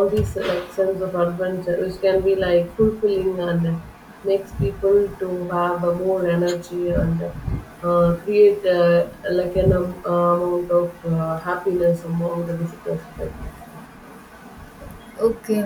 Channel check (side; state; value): both; identical; correlation 1.00